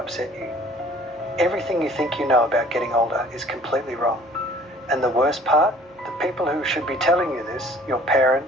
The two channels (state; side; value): normal; both; correlation 0.52